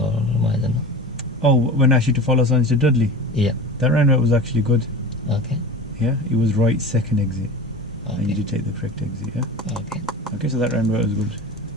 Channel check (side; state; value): both; normal; correlation 0.33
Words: I don't know? Oh, when I asked you to follow signs to Dudley? Yeah. That roundabout was actually good. Okay. Yeah, it was right 2nd exit. Okay. And you did take the correct exit, yeah? Okay. Okay, so that roundabout was good.